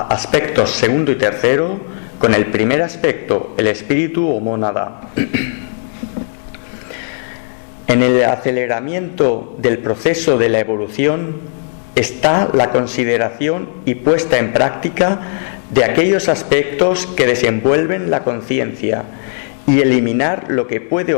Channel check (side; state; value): right; silent; 63 dB below the other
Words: segundo y tercero con el primer aspecto, el espíritu o mónada. En el aceleramiento del proceso de la evolución está la consideración y puesta en práctica de aquellos aspectos que desenvuelven la conciencia y eliminar lo que puede